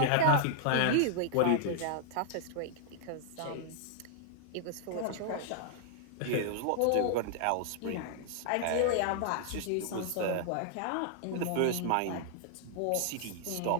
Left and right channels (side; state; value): both; different; correlation -0.01